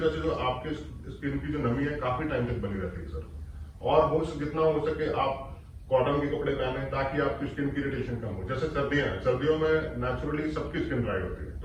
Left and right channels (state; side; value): identical; both; correlation 1.00